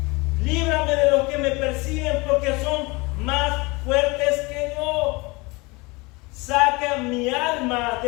Líbrame de los que me persiguen, porque son más fuertes que yo. Saca mi alma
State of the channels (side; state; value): right; quieter; 25.5 dB